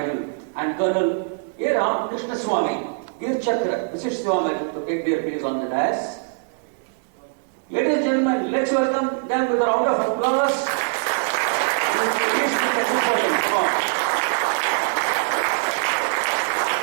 and Colonel A. Ram Krishna Swami, Veer Chakra, Visit Siva Medal, to take their place on the dais. Ladies and gentlemen, let's welcome them with a round of applause.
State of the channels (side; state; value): left; silent; digital silence